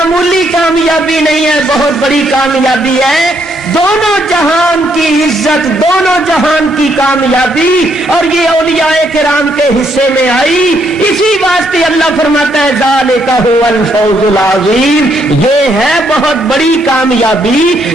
کامیابی نہیں ہے، بہت بڑی کامیابی ہے۔ دونوں جہان کی عزت، دونوں جہان کی کامیابی، اور یہ اولیاء کرام کے حصے میں آئی۔ اسی واسطے اللہ فرماتا ہے ذالک هو الفوز العظیم، یہ ہے بہت بڑی کامیابی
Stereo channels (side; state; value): both; normal; correlation 0.73